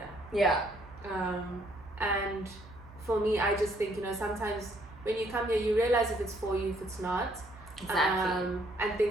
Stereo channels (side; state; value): right; noise; hum, 20 dB below the sound